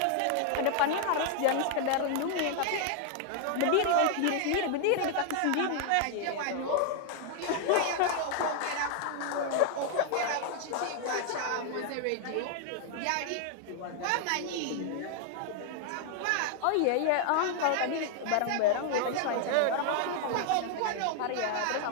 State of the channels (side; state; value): both; different; correlation 0.00